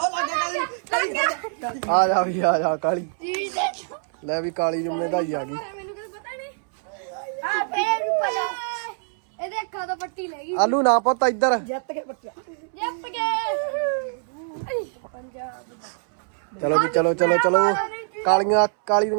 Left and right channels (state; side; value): silent; left; 62 dB below the other